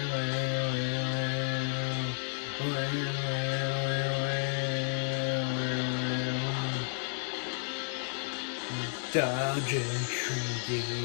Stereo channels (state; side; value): silent; right; digital silence